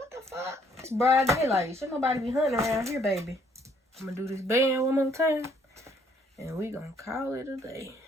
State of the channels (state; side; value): normal; both; correlation 0.65